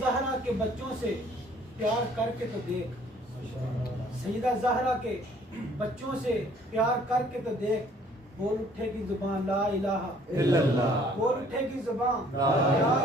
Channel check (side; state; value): both; normal; correlation 0.58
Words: زہرا کے بچوں سے پیار کر کے تو دیکھ، سیدہ زہرا کے بچوں سے پیار کر کے تو دیکھ، بول اٹھے گی زبان لا الہ الا اللہ، بول اٹھے گی زبان لا